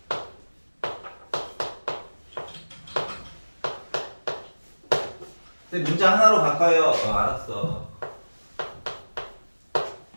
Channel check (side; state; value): both; inverted; correlation -1.00